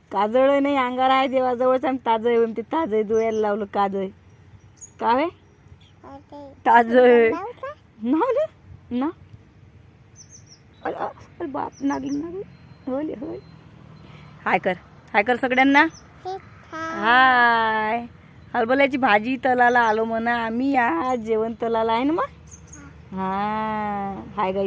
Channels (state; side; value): identical; both; correlation 1.00